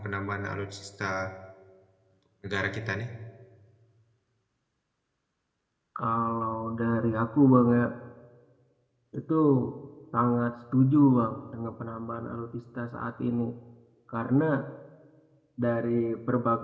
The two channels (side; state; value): both; identical; correlation 1.00